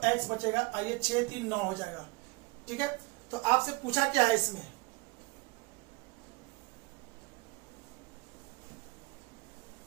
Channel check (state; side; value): quieter; left; 25.3 dB